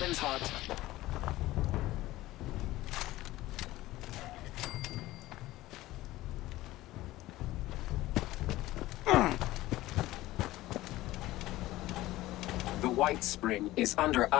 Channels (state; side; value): quieter; right; 17.0 dB